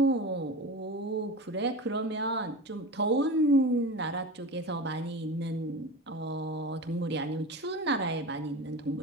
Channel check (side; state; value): both; normal; correlation 0.29